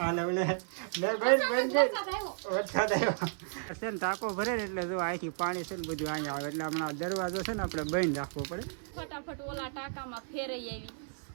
ટાંકો ભરે ને એટલે જો અહીંથી પાણી છે ને બધું અહીંયા આવે એટલે હમણાં દરવાજો છે ને આપણે બંધ રાખવો પડે. ફટાફટ ઓલા ટાંકામાં ફેરઈ આવી.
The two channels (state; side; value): silent; left; 56 dB below the other